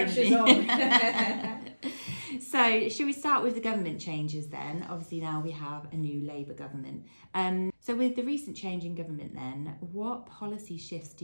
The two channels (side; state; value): both; inverted; correlation -1.00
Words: to be. On. So should we start with the government changes then? Obviously now we have a new Labour government. So with the recent change in government then, what policy shifts do